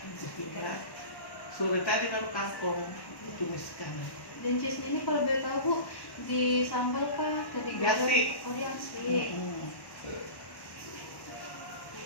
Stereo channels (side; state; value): right; late; 1.1 ms